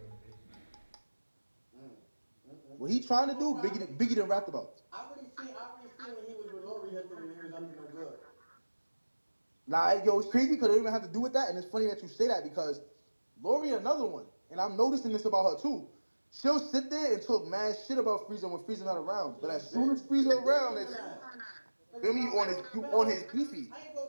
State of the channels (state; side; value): inverted; both; correlation -1.00